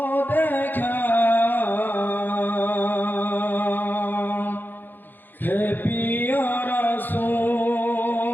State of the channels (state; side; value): late; right; 0.090 ms